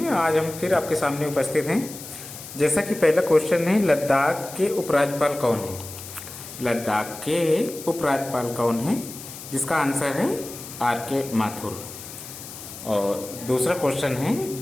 आज हम फिर आपके सामने उपस्थित हैं। जैसा कि पहला क्वेश्चन है, लद्दाख के उपराज्यपाल कौन है? लद्दाख के उपराज्यपाल कौन है? जिसका आंसर है आर के माथुर। और दूसरा क्वेश्चन है,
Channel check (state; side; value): noise; left; hiss, 13 dB below the sound